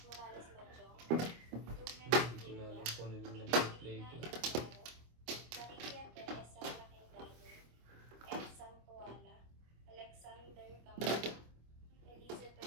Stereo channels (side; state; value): left; late; 25 ms